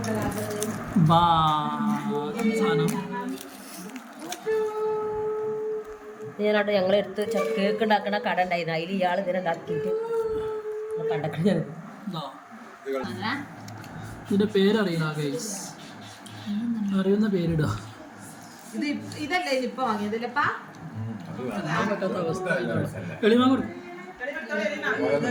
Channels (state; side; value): identical; both; correlation 1.00